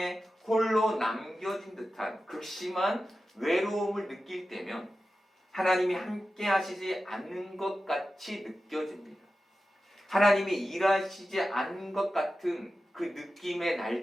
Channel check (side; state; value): both; normal; correlation 0.93